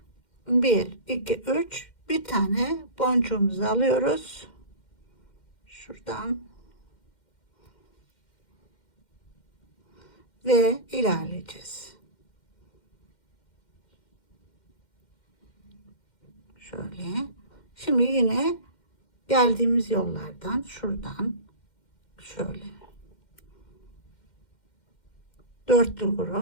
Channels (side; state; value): right; late; 2.1 ms